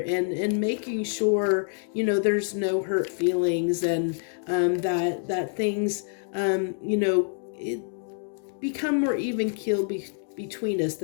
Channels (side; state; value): right; silent; 60 dB below the other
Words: making sure, there's no hurt feelings, and that things, it become more even keel between us,